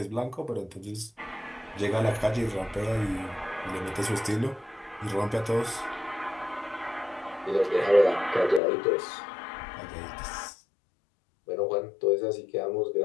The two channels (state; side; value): drops out; right; at 8.6 s